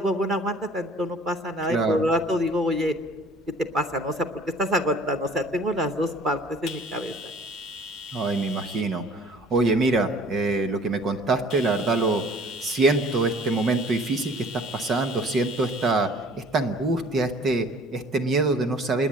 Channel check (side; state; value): both; normal; correlation 0.51